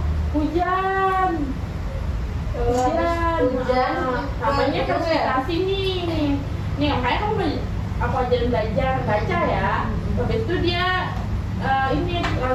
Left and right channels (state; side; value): identical; both; correlation 1.00